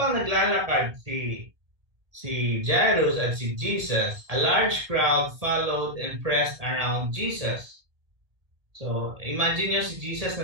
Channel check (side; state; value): left; late; 1.8 ms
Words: naglalakad si Jairus at si Jesus, a large crowd followed and pressed around Jesus. So, imagine nyo si Jesus